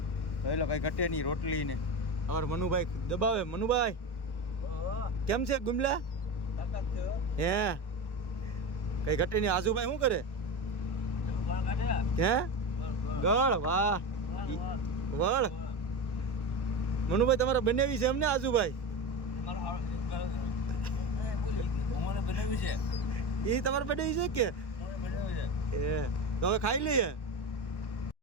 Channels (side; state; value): right; late; 1.1 ms